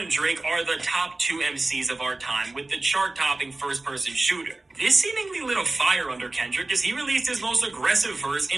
Drake are the top two MCs of our time with the chart-topping first-person shooter. This seemingly lit a fire under Kendrick as he released his most aggressive verse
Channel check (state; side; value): quieter; left; 3.0 dB